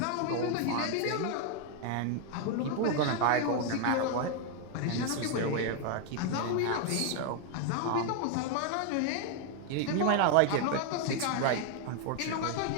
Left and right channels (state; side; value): different; both; correlation 0.01